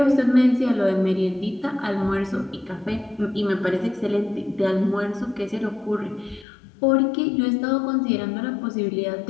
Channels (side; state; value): right; drops out; at 6.5 s